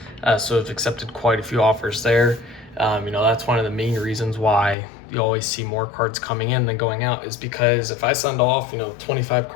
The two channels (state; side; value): drops out; right; at 4.8 s